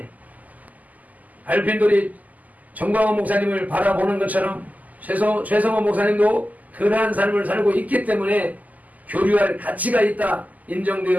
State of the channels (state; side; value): late; left; 0.079 ms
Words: 발핀돌이 정광훈 목사님을 바라보는 것처럼 최성호 목사님도 그러한 삶을 살고 있기 때문에 교류할 가치가 있다